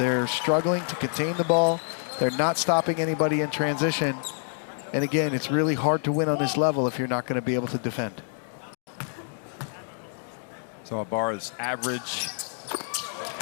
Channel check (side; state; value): right; silent; digital silence